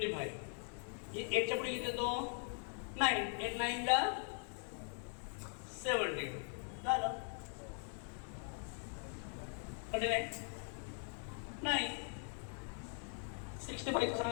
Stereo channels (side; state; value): right; silent; 50 dB below the other